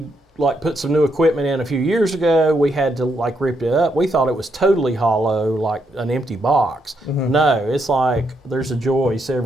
put some new equipment in a few years ago, we had to rip it up. We thought it was totally hollow, like an empty box. No, it's like there's a joist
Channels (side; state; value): both; normal; correlation 0.78